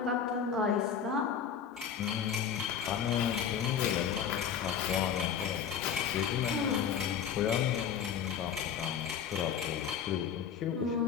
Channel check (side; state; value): right; quieter; 7.8 dB